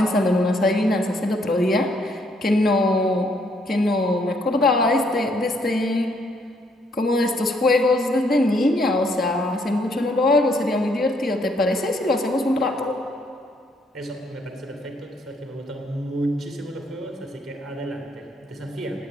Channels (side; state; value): both; normal; correlation 0.70